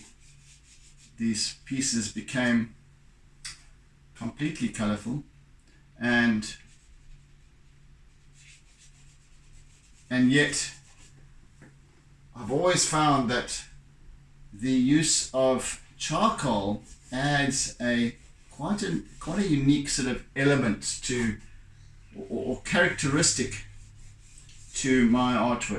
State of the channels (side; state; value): both; identical; correlation 1.00